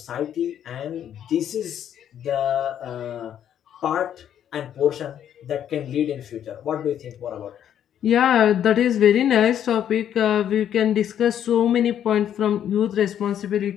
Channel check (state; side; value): quieter; right; 9.9 dB